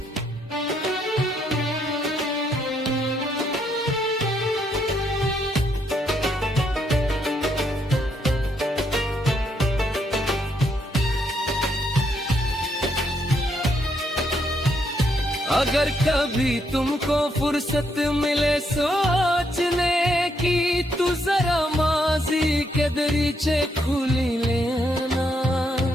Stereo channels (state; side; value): normal; both; correlation 0.75